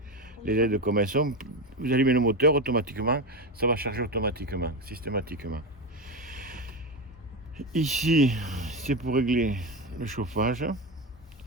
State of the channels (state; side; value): normal; both; correlation 0.17